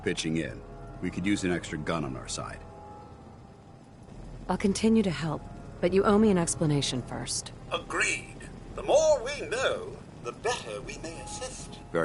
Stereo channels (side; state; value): both; identical; correlation 1.00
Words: in, we could use an extra gun on our side. I'll continue to help, but you owe me an explanation first. Agreed. The more we know, the better we may assist.